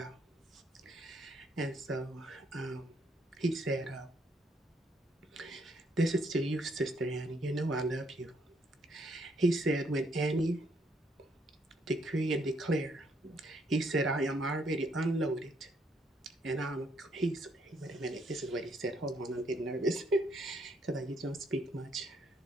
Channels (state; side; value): normal; both; correlation 0.71